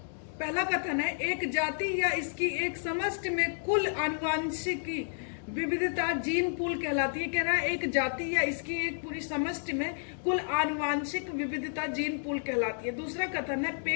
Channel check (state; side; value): silent; right; digital silence